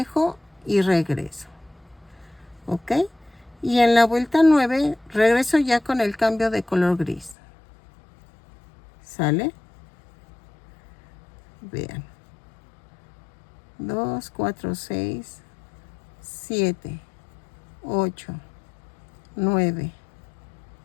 y regreso. ¿Ok? Y en la vuelta 9 regreso ya con el cambio de color gris. ¿Sale? Vean. 2, 4, 6, 7, 8, 9,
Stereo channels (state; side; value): drops out; right; at 7.4 s